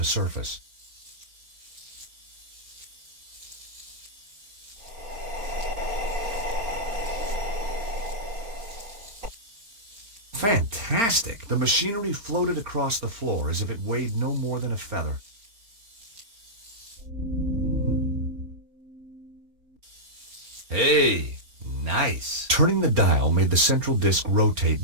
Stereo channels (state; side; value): late; left; 4.4 ms